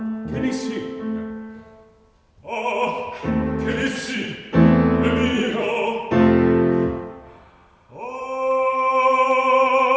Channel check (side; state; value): both; identical; correlation 1.00